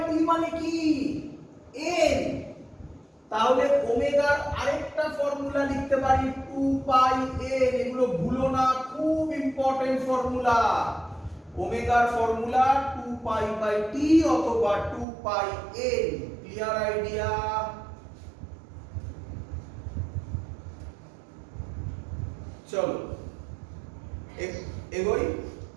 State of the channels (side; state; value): left; drops out; at 15.1 s